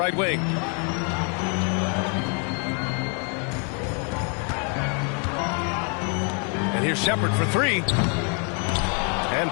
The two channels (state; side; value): quieter; right; 38.7 dB